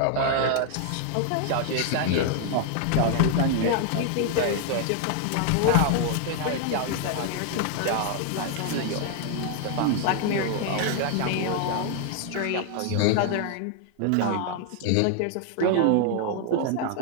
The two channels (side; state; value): both; different; correlation 0.00